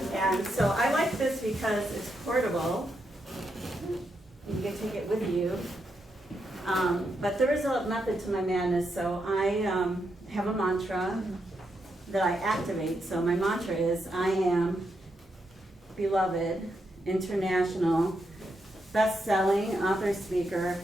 And so I like this because it's portable. You can take it with you. But there is a method to my madness. So I have a mantra that I activate. So my mantra is, I am beloved, international, best-selling, author, speaker,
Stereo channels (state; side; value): normal; both; correlation 0.82